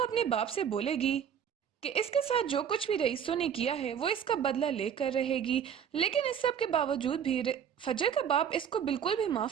बाप से बोलेगी कि इसके साथ जो कुछ भी रईसों ने किया है वो इसका बदला लेकर रहेगी। लेकिन इस सब के बावजूद भी फजर का बाप इसको बिल्कुल भी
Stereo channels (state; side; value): quieter; left; 8.3 dB